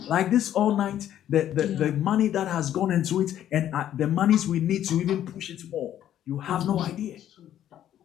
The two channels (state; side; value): quieter; right; 11.3 dB